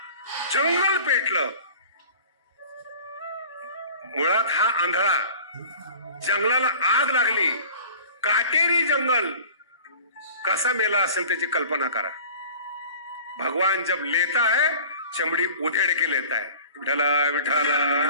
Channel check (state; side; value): inverted; both; correlation -0.43